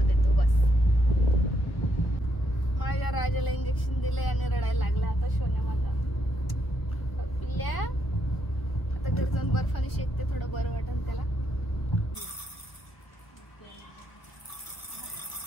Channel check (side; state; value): right; late; 1.2 ms